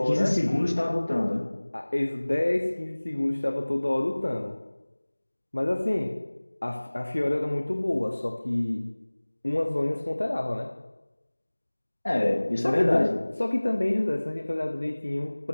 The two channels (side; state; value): both; inverted; correlation -1.00